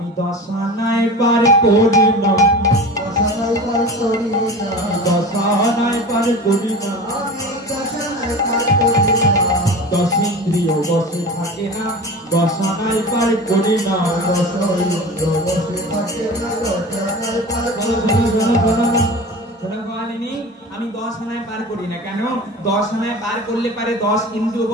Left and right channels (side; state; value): both; normal; correlation 0.33